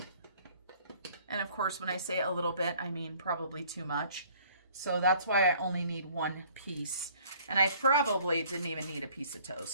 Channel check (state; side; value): inverted; both; correlation -0.56